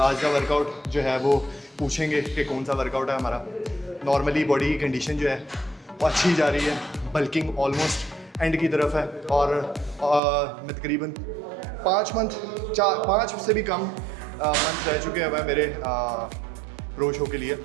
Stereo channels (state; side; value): drops out; left; at 10.2 s